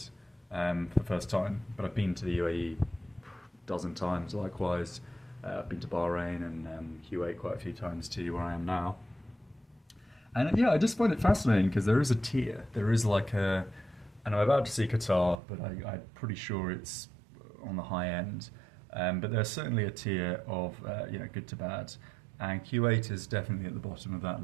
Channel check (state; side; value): drops out; left; at 15.4 s